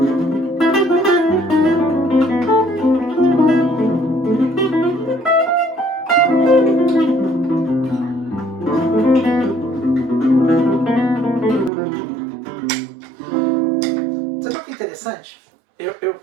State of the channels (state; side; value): drops out; left; at 11.7 s